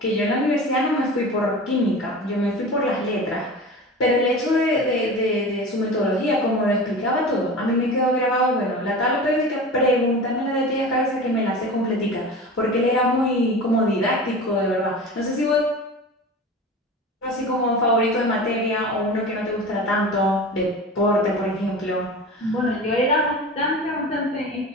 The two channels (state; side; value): normal; both; correlation 0.33